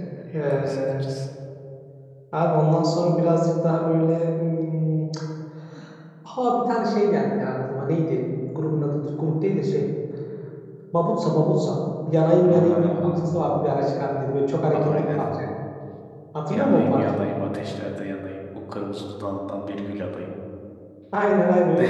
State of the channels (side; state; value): both; identical; correlation 1.00